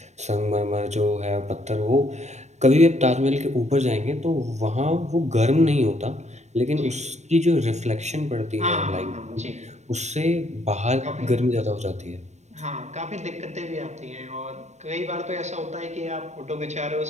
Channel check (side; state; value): left; late; 0.33 ms